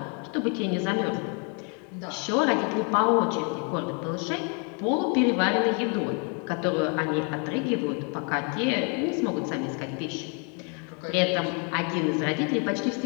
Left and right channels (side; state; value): right; quieter; 36.6 dB